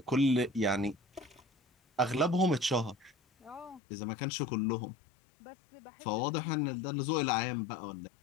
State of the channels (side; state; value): right; drops out; at 3.8 s